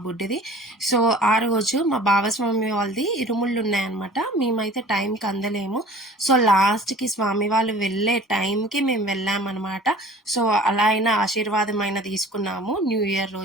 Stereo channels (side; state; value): both; normal; correlation 0.46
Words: బుడ్డిది. సో ఆ రోజు మా బావస్వామి వాళ్ళది ఇరుముళ్ళు ఉన్నాయన్నమాట. మేమైతే టైంకి అందలేము. సో లాస్ట్కి స్వామి వాళ్ళు వెళ్ళే టైంకి మేము వెళ్ళామన్నమాట. సో అలా అయినా ఆశీర్వాదమైన తీసుకున్నాము న్యూ ఇయర్